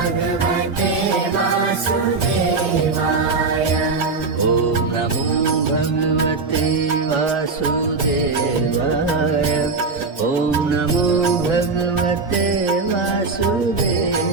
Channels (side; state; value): left; quieter; 4.2 dB